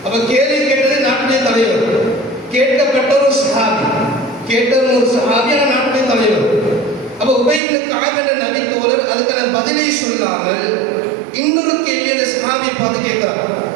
அப்ப கேள்வி கேட்டது நாட்டுடைய தலைவர். கேட்கப்பட்ட ஒரு சஹாபி, நாட்டுடைய தலைவர். அப்ப உபை இப்னு கஅப் என்ற நபித்தோழர் அதுக்கான பதிலை சொல்லாமல் இன்னொரு கேள்வி அந்த சஹாபியை பார்த்து கேட்கிறார்.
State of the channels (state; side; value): drops out; left; at 7.6 s